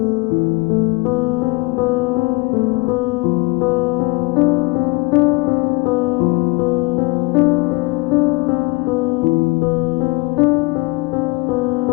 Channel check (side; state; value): right; quieter; 26.1 dB